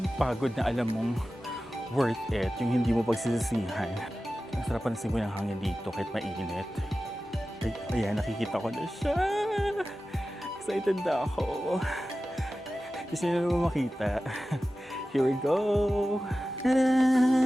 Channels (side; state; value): both; normal; correlation 0.95